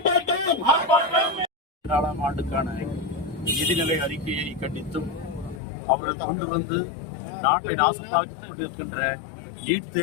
ஆர்ப்பாட்டம். 4ஆம் ஆண்டுக்கான நிதிநிலை அறிக்கையை கண்டித்தும் அவர்கள் கொண்டு வந்து நாட்டை நாசமாக்கிக் கொண்டிருக்கின்ற நீட்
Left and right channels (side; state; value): right; drops out; at 5.6 s